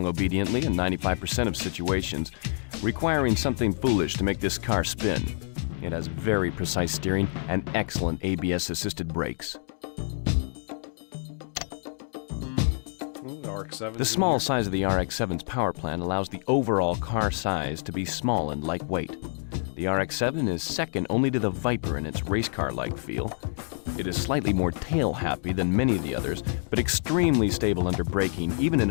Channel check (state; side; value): silent; right; digital silence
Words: obediently in 95% of situations, requiring something foolish to make this car spin. It has very precise steering and excellent ABS-assisted brakes. RX-7. The small size of the RX-7's power plant allows the overall car size to be small and lightweight. The RX-7 is second only to the Viper in its race car-like feel. It is slightly more tail-happy than many of the others, but extremely stable under braking, even in